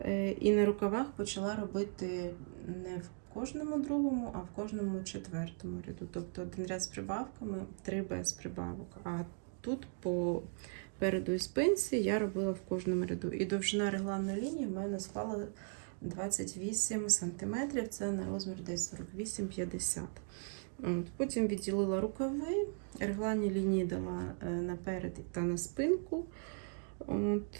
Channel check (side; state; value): left; silent; 53 dB below the other